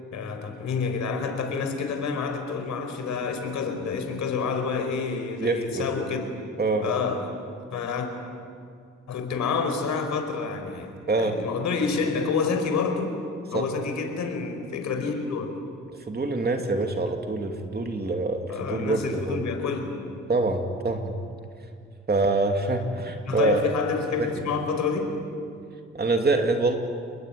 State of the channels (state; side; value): normal; both; correlation 0.32